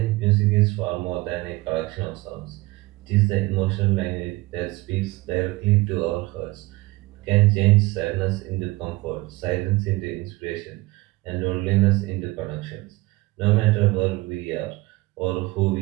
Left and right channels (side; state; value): left; quieter; 20.7 dB